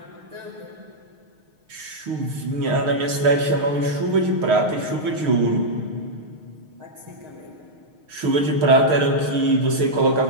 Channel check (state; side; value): late; left; 6.5 ms